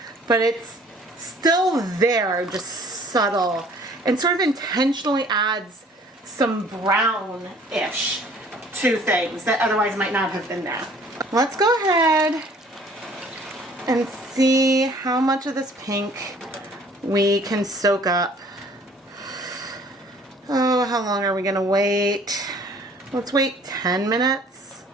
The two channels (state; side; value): normal; both; correlation 0.54